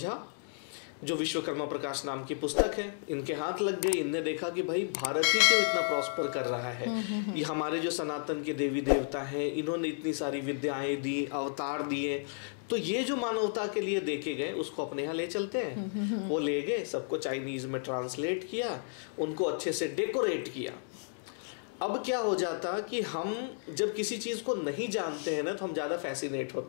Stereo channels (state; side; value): silent; right; digital silence